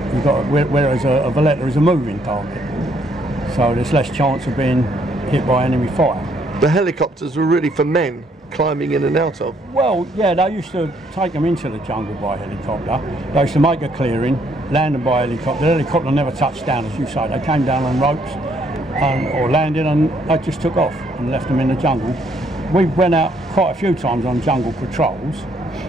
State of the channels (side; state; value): both; normal; correlation 0.69